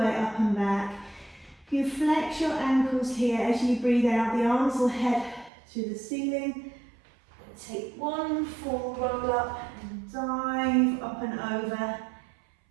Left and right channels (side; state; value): left; drops out; at 5.5 s